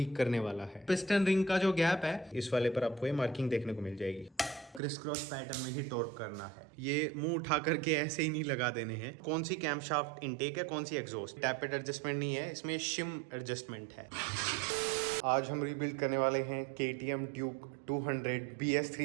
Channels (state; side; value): drops out; left; at 4.8 s